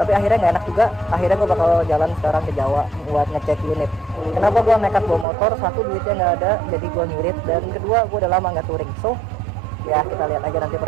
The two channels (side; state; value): left; drops out; at 5.2 s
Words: akhirnya nggak enak juga. Akhirnya gue bakal jalan sekarang ke Jawa buat ngecek unit. Kenapa gue nekat bawa motor? Satu, duitnya nggak ada, jadi gue ngirit. Dan kedua, gue udah lama nggak touring. So, ya kita lihat aja nanti